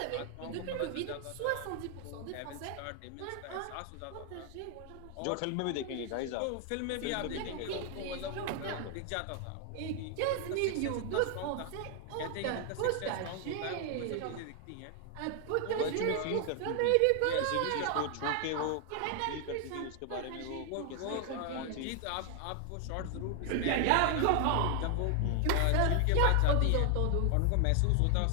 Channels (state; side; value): different; both; correlation 0.00